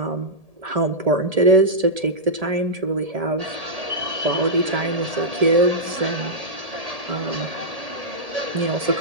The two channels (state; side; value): late; left; 1.8 ms